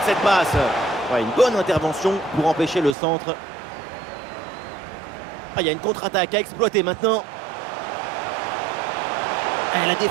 cette passe. Ouais, une bonne intervention pour empêcher le centre. Il y a une contre-attaque à exploiter maintenant. La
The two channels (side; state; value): left; drops out; at 3.0 s